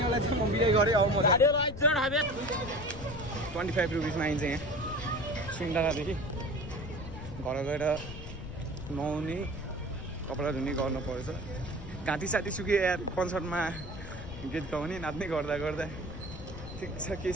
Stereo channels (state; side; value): noise; left; rumble, 10 dB below the sound